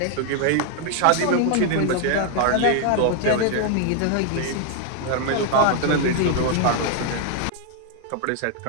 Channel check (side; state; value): both; different; correlation 0.00